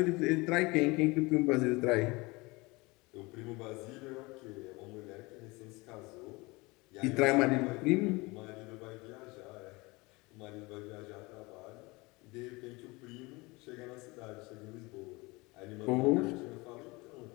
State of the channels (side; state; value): right; quieter; 24.2 dB